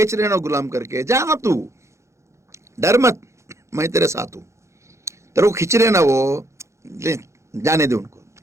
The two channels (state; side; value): late; left; 0.14 ms